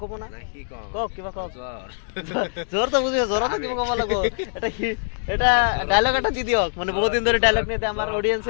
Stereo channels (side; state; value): right; silent; digital silence